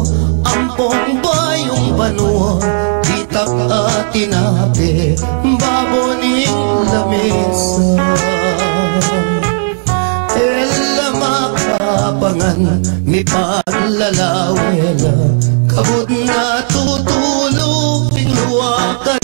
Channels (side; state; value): left; silent; digital silence